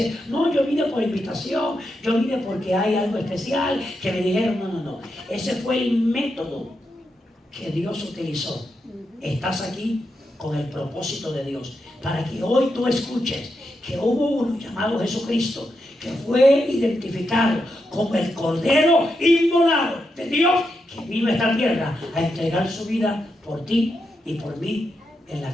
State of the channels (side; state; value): both; normal; correlation 0.85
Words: no, yo vine por invitación, yo vine porque hay algo especial que me dijeron. No. Ese fue el método que Dios utilizó. Estás aquí con el propósito de Dios, para que hoy tú escuches que hubo uno llamado Jesucristo, que fue identificado como el Cordero inmolado de Dios, que vino a esta tierra a entregar su vida por ti y por mí en la